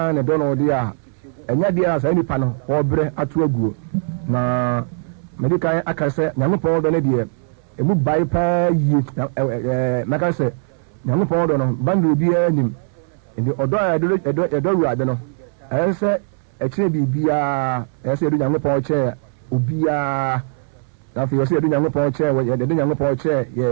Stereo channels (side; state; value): left; silent; 62 dB below the other